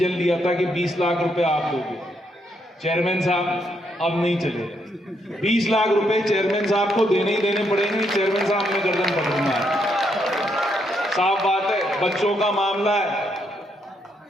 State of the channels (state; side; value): normal; both; correlation 0.76